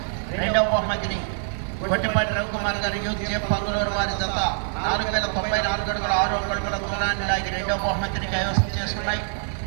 రెండవ బహుమతిని గొట్టిపాటి రవికుమార్ గారు యూత్ చేప్ పంగులూరు వారి జత 4094 అడుగుల 6 అడుగుల దూరాన్ని లాగి రెండవ బహుమతిని కైవసం చేసుకున్నాయి.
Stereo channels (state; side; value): silent; left; digital silence